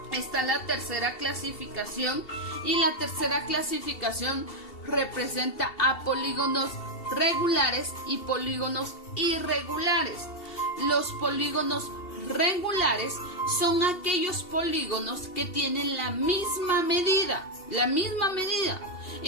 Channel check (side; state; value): right; late; 2.7 ms